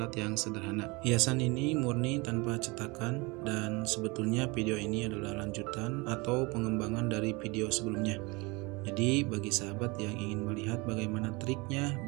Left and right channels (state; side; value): quieter; left; 26.1 dB